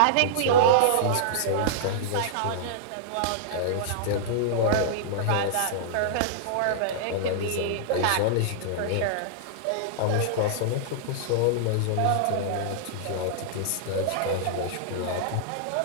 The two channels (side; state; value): both; different; correlation -0.02